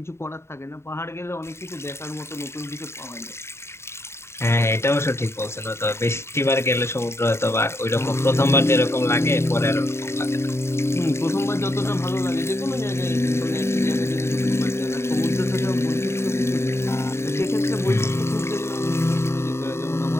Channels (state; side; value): late; right; 0.13 ms